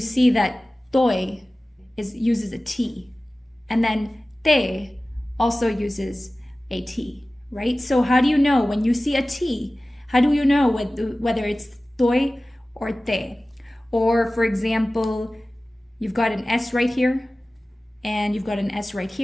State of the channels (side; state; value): both; normal; correlation 0.97